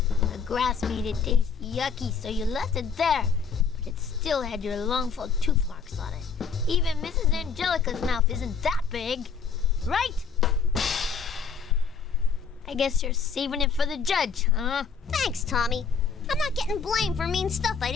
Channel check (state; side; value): quieter; right; 5.7 dB